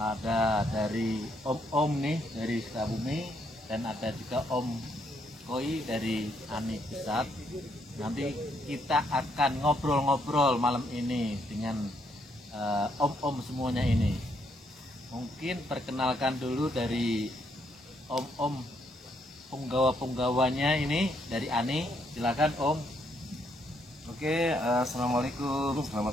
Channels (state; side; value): normal; both; correlation 0.74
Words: dari Om nih dari Sukabumi, dan ada juga Om Koi dari ANI Pusat. Nanti kita akan ngobrol-ngobrol malam ini dengan om-om semuanya ini. Mungkin perkenalkan dulu dari om-om penggawa-penggawanya ini dari ANI. Silakan Om. Oke, assalamualaikum,